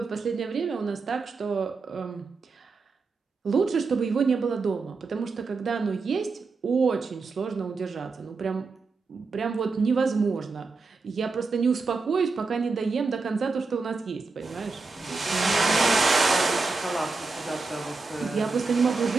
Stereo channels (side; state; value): left; quieter; 4.2 dB